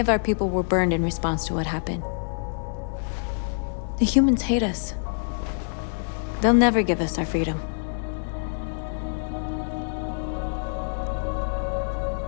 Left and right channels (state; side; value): silent; right; digital silence